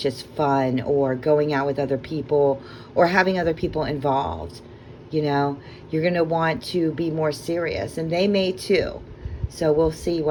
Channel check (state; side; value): identical; both; correlation 1.00